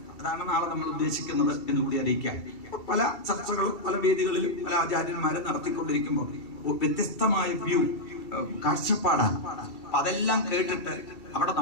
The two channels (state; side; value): late; right; 2.7 ms